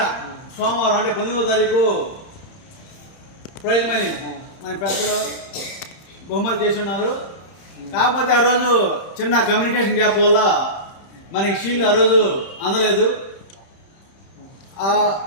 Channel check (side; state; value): right; late; 30 ms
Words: సోమవారం అంటే 19వ తారీఖు ప్రైజ్ మనీ మన పెద్దలు బహుమతి చేసి ఉన్నారు. కాకపోతే ఆ రోజు చిన్న కమ్యూనికేషన్ గ్యాప్ వల్ల మనకి షీల్డ్ ఆ రోజు అందలేదు. ఆ